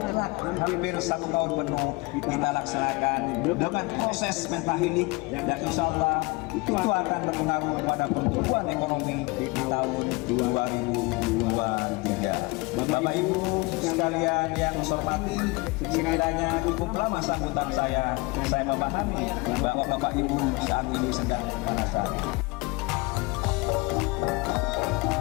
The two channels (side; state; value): right; quieter; 25.4 dB